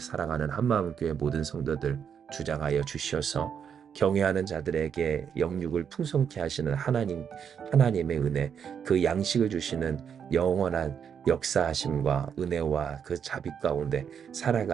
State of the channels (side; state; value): left; quieter; 7.6 dB